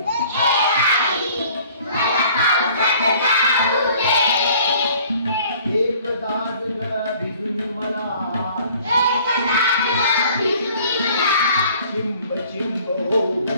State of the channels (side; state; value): both; inverted; correlation -0.53